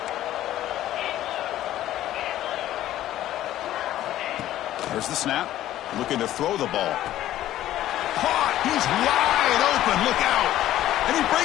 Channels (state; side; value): quieter; right; 13.4 dB